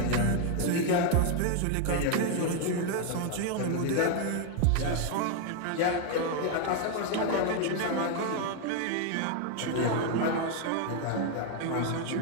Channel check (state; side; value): different; both; correlation 0.01